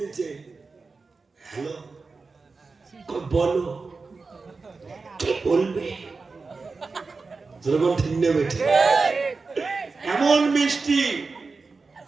দিচ্ছে, হ্যালো বলো কি বলবে, যেরকম ঠিক নেবে। এমন মিষ্টি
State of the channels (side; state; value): left; quieter; 4.2 dB